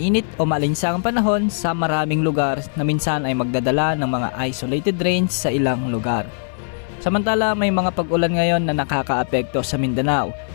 o maalinsangang panahon sa maraming lugar na minsan ay magdadala ng mga isolated rains sa ilang lugar. Samantala, may mga pag-ulan ngayon na nakakaapekto sa Mindanao.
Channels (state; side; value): silent; right; 59 dB below the other